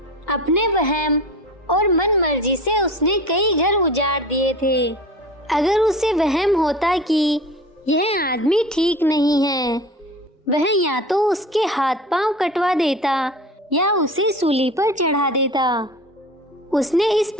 अपने वहम और मन मर्जी से उसने कई घर उजाड़ दिए थे। अगर उसे वहम होता कि यह आदमी ठीक नहीं है, वह या तो उसके हाथ पांव कटवा देता या उसे सूली पर चढ़ा देता। उसने इस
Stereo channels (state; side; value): normal; both; correlation 0.36